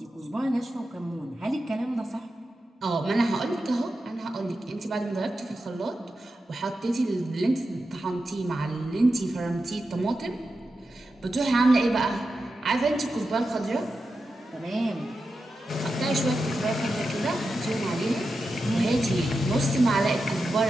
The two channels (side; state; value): both; normal; correlation 0.90